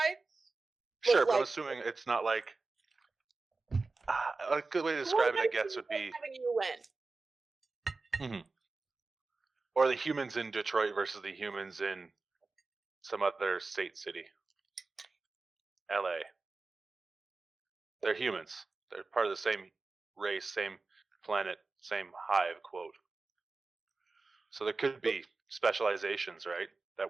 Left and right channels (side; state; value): left; quieter; 3.8 dB